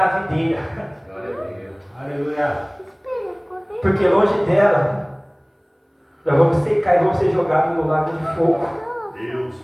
videira. Aleluia. Porque longe dela, nós vamos secar e vamos ser jogados no lago de fogo. Deus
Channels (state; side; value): identical; both; correlation 1.00